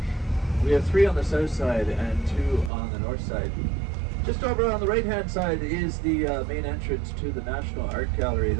We have 3 on the south side and 2 on the north side. Just over on the right-hand side is the main entrance to the National Art Gallery.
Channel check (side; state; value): left; drops out; at 2.7 s